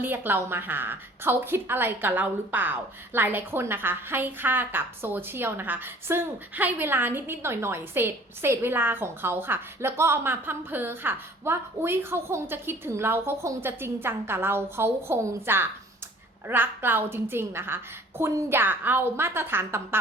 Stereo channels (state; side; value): normal; both; correlation 0.52